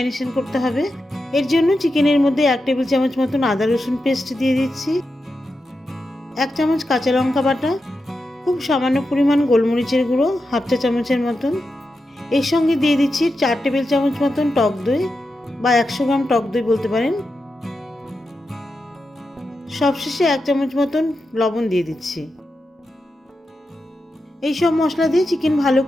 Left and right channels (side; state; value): both; normal; correlation 0.89